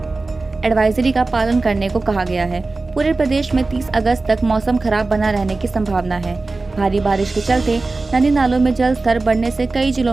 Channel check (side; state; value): left; quieter; 3.5 dB